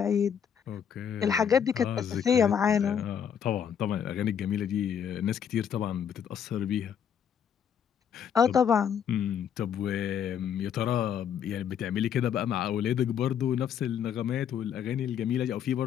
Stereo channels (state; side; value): quieter; right; 8.3 dB